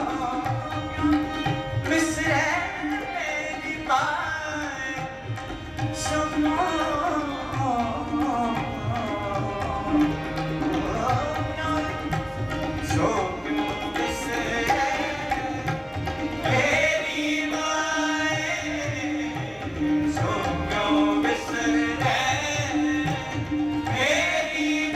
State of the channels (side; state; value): both; identical; correlation 1.00